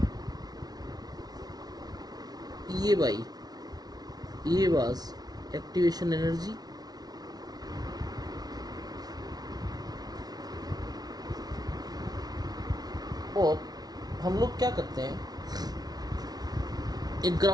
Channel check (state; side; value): late; left; 0.19 ms